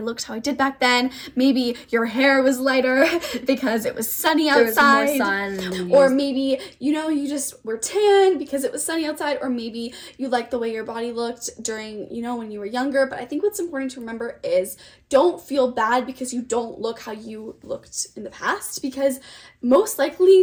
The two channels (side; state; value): both; identical; correlation 1.00